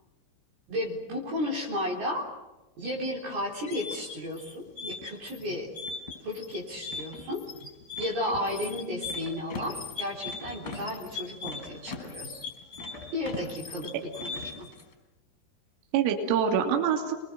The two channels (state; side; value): late; left; 17 ms